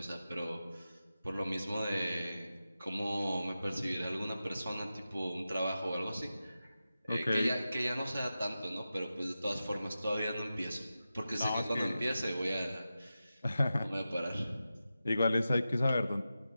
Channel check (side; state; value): both; inverted; correlation -0.92